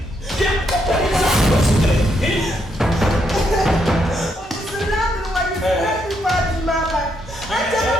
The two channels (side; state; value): both; normal; correlation 0.77